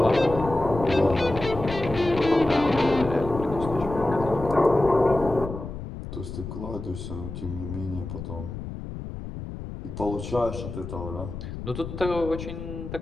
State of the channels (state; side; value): noise; left; rumble, 9 dB below the sound